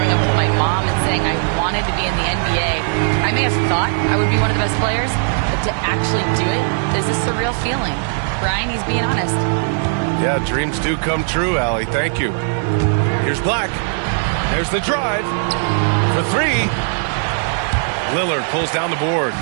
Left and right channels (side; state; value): left; silent; 67 dB below the other